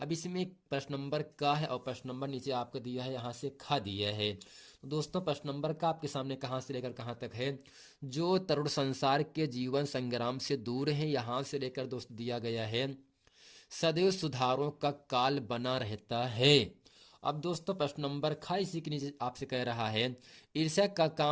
इसमें एक प्रश्न नंबर का है और प्रश्न नंबर नीचे आपको दिया है, यहाँ से खा दिया है। तो दोस्तों प्रश्न नंबर का आपके सामने कहाँ से लेकर कहाँ तक है, जो तरुण संसार के जीवन संग्राम से दूर है, यहाँ से लेकर दोस्त दिया गया है सदैव सुधारों का काल बना रहता है। अब दोस्तों प्रश्न नंबर खा इसी के नीचे आपसे कह रहा है, ईर्ष्या का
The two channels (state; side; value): identical; both; correlation 1.00